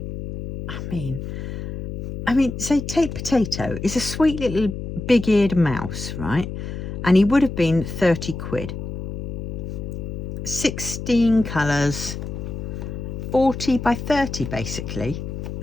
I mean, say take Potato. It's a sweet little big-eared mouse, right? And he would have been 30 quid. 16 colours, 40 by 30 basically,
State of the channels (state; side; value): noise; left; hum, 7 dB below the sound